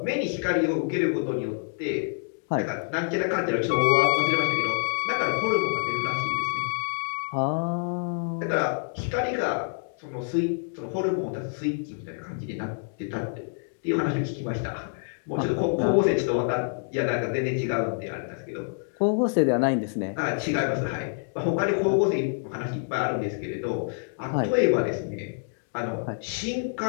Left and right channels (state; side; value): silent; right; digital silence